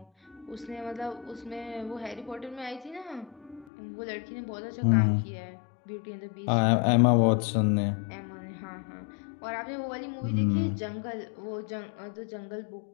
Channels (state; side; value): drops out; right; at 3.7 s